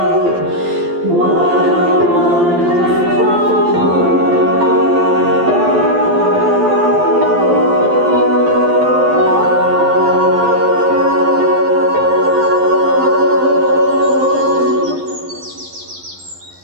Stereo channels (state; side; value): late; left; 12 ms